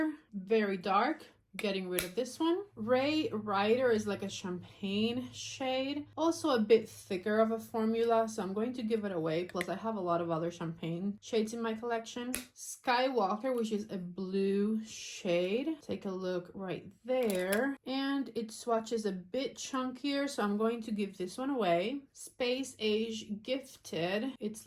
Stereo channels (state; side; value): identical; both; correlation 1.00